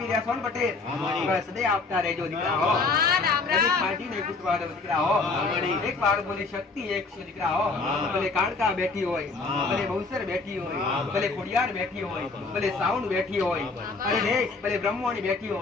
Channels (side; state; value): right; quieter; 3.9 dB